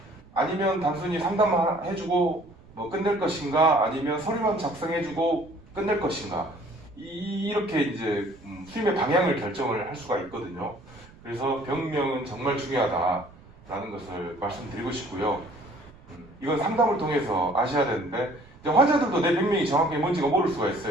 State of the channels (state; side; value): noise; right; rumble, 24 dB below the sound